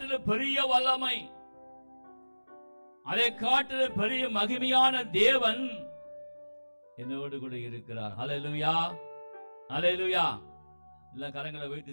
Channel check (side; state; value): both; inverted; correlation -1.00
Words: பெரிய வல்லமை, அதை காட்டிலும் பெரிய மகிமையான தேவன் என்னோடு கூட இருக்கிறார். அல்லேலூயா, அல்லேலூயா. எல்லா கரங்களை